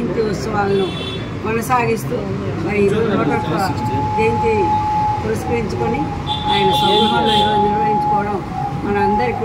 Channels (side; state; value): both; identical; correlation 1.00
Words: ఉత్సవాలను కొనసాగిస్తూ మరి 101 జయంతి పురస్కరించుకొని ఆయన స్వగృహంలో ఈరోజు నిర్వహించుకోవడం మనందరికీ